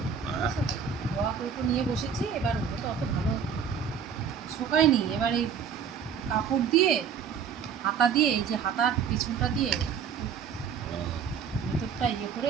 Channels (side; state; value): left; quieter; 7.0 dB